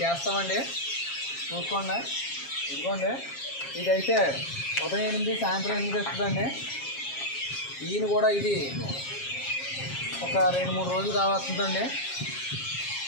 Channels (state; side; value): late; right; 7.4 ms